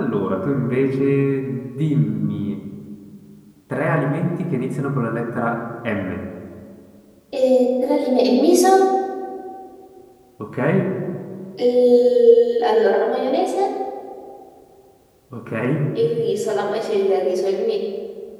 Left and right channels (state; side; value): identical; both; correlation 1.00